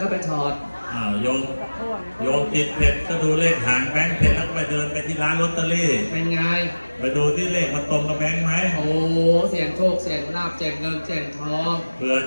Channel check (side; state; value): both; inverted; correlation -1.00